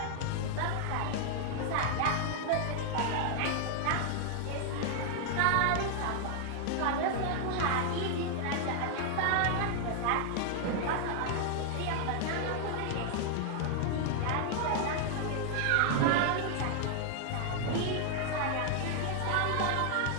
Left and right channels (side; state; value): both; different; correlation 0.00